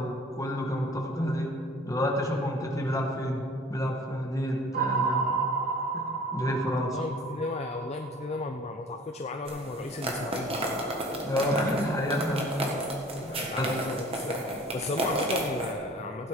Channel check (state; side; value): normal; both; correlation 0.47